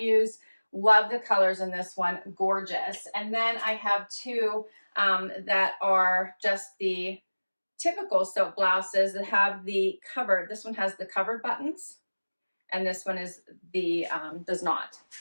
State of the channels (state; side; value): inverted; both; correlation -1.00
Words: Love the colors in this one, gorgeous. And then I have two that are just the typical silk blouses that have the covered. This one has the covered buttons, and this one is the does not.